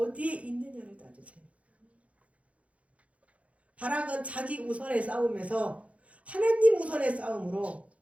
있느냐를 따지세요. 바락은 자기 우선의 싸움에서 하나님 우선의 싸움으로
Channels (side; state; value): left; late; 0.064 ms